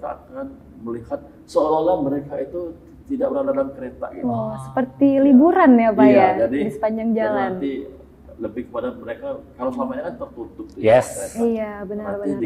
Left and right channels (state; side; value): identical; both; correlation 1.00